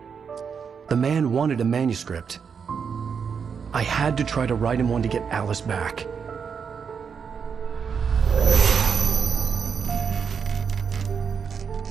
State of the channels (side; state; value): left; quieter; 6.5 dB